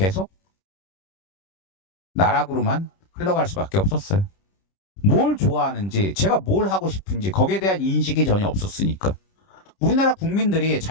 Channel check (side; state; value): right; late; 30 ms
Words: 나락으로만 흘러갈 수밖에 없었어요. 뭘 좋아하는지 제가 뭘 하고 싶은지 거기에 대한 인식이 전혀 없었으니까. 우리나라 국민들이